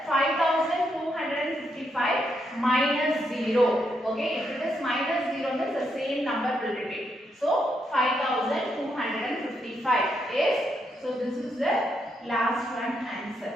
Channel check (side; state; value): both; normal; correlation 0.79